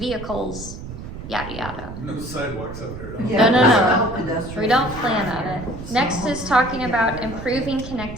Yada, yada. No sidewalks out there. Yeah, No. without pedestrians. We don't plan on it. Next is talking about improving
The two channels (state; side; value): noise; right; rumble, 11 dB below the sound